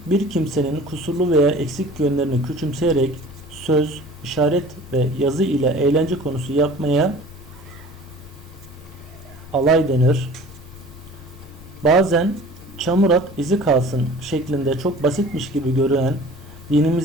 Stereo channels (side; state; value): both; normal; correlation 0.44